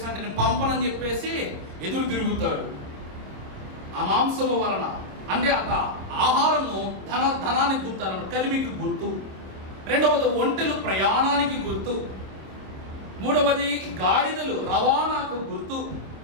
అంటే, నేను పంపనని చెప్పేసి ఎదురు తిరుగుతాడు. ఆ మాంసము వలన అంటే ఆహారము ధనానికి గుర్తు అన్నమాట, కలిమికి గుర్తు. రెండవది ఒంటెలు ప్రయాణానికి గుర్తు. మూడవది గాడిదలు రవాణాకు గుర్తు.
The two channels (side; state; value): left; late; 26 ms